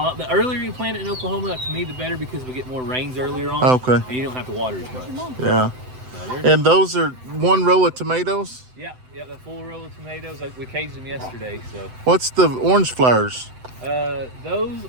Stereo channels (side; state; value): left; late; 7.9 ms